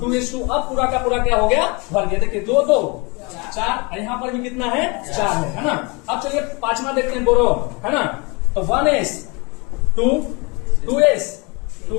अब पूरा का पूरा क्या हो गया भर गया, देखिए 2 2 4, यहाँ पर भी कितना है 4 है ना। अब चलिए 5वां देखते हैं बोरोन, है ना। तो 1s2 2s2,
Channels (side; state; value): right; quieter; 28.9 dB